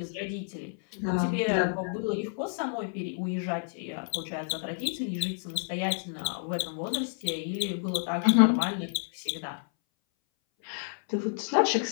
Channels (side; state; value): right; silent; 58 dB below the other